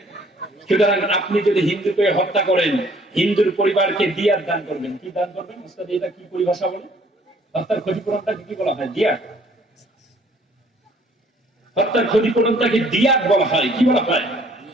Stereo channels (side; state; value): both; normal; correlation 0.59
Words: সুতরাং আপনি যদি হিন্দুকে হত্যা করেন, হিন্দুর পরিবারকে দিয়াত দান করবেন। কি দান করবেন? উস্তাদ এটা কি পরিভাষা বলে? হত্যার ক্ষতিপূরণটাকে কি বলা হয়? দিয়াত। হত্যার ক্ষতিপূরণটাকে দিয়াত বলা হয়। কি বলা হয়?